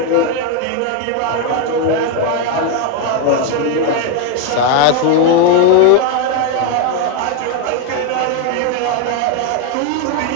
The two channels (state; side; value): different; both; correlation 0.01